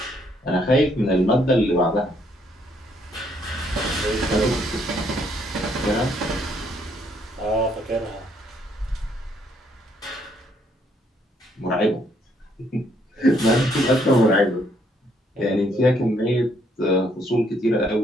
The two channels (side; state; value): both; normal; correlation 0.69